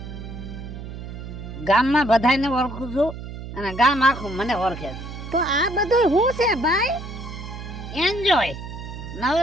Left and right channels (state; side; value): noise; right; hum, 10 dB below the sound